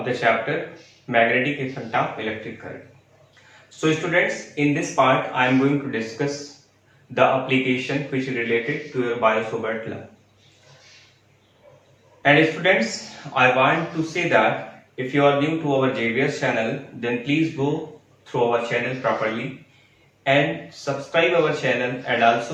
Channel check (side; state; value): both; identical; correlation 1.00